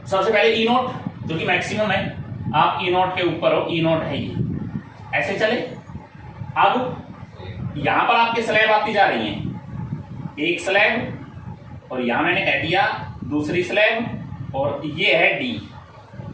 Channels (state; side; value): identical; both; correlation 1.00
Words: सबसे पहले E0 जो कि मैक्सिमम है, आप E0 के ऊपर हो, E0 है ये, ऐसे चले। अब यहां पर आपके स्लैब आती जा रही हैं, एक स्लैब, और यहां मैंने कह दिया दूसरी स्लैब, और ये है D,